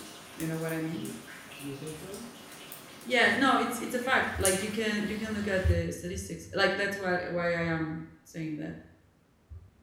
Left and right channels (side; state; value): both; identical; correlation 1.00